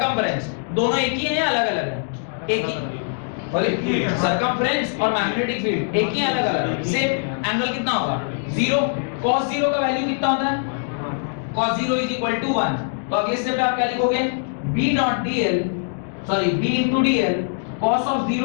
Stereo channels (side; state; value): right; silent; 62 dB below the other